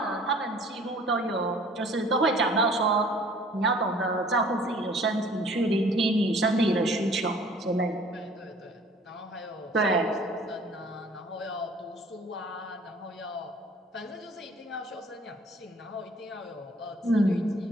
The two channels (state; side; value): normal; both; correlation 0.52